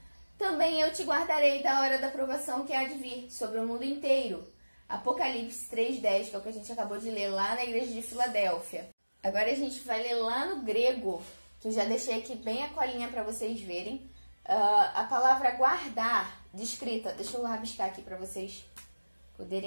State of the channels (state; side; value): inverted; both; correlation -1.00